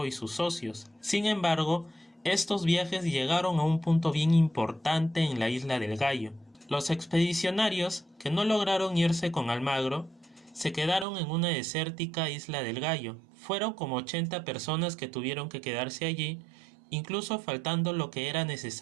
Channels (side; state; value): left; drops out; at 11.1 s